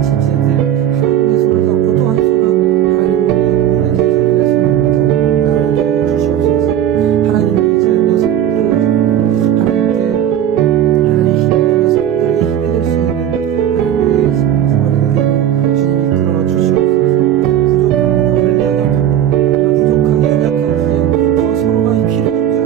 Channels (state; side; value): quieter; left; 10.7 dB